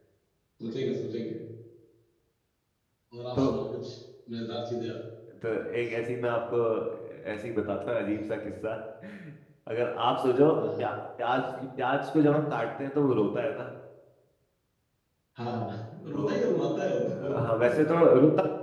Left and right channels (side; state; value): both; identical; correlation 1.00